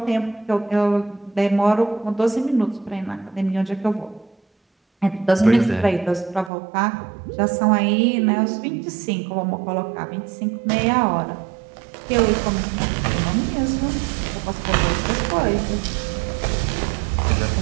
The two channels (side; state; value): left; drops out; at 6.5 s